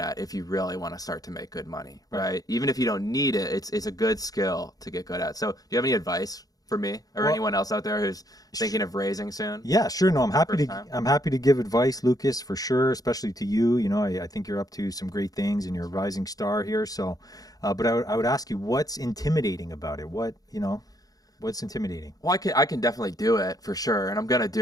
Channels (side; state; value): right; late; 0.18 ms